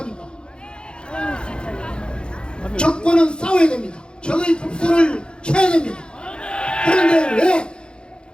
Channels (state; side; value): late; right; 0.051 ms